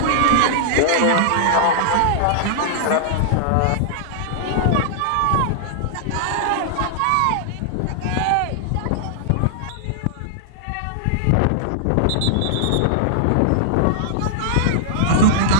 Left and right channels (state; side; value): different; both; correlation -0.01